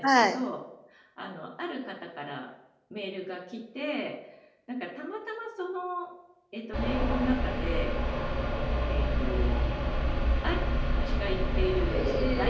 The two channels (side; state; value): both; identical; correlation 1.00